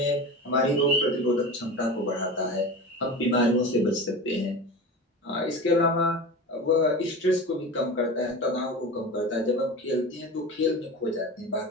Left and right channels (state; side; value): normal; both; correlation 0.30